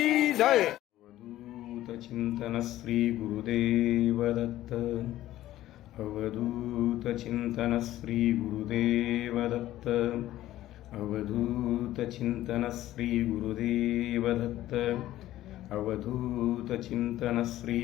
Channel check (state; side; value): quieter; right; 14.4 dB